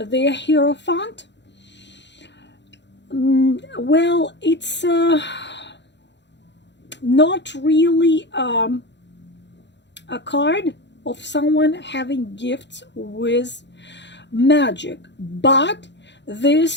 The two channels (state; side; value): late; right; 0.52 ms